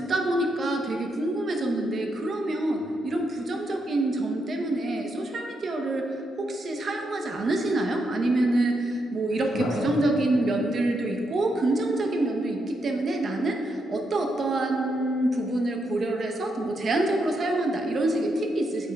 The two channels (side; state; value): both; normal; correlation 0.81